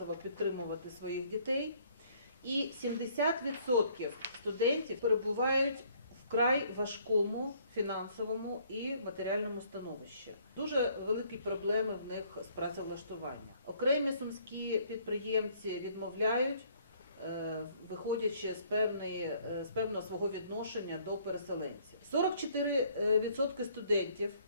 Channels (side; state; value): both; inverted; correlation -0.62